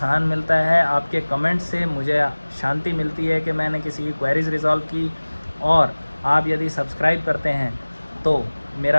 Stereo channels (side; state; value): both; inverted; correlation -1.00